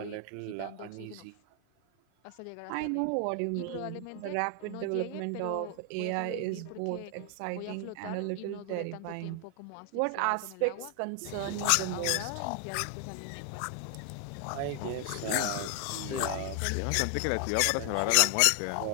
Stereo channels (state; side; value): different; both; correlation 0.00